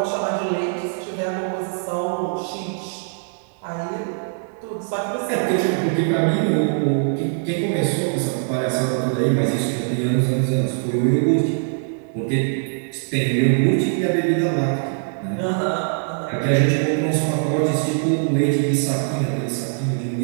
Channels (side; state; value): left; silent; digital silence